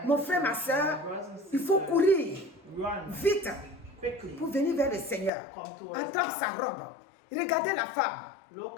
Mon frère, ma soeur, il faut courir vite pour venir vers le Seigneur. Attendre sa robe. Regardez la femme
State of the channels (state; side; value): drops out; right; at 5.3 s